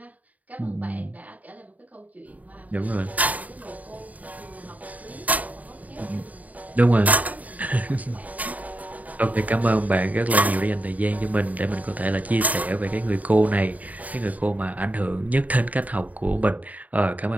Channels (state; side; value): late; left; 0.073 ms